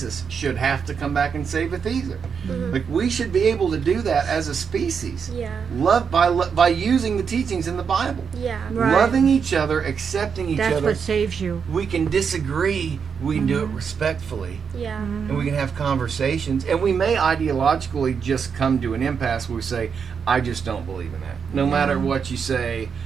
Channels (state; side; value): quieter; left; 6.4 dB